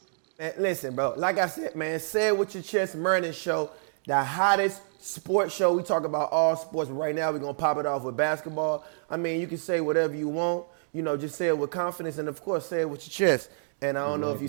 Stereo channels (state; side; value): silent; left; digital silence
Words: Man, listen, bro. Like I said, man, Say It With Your Chest Mernin Show, the hottest sports show. We talk about all sports, but right now we're gonna pop it off with basketball. I mean, you can say whatever you want. Just say it with confidence, and of course, say it with your chest. And I don't know if you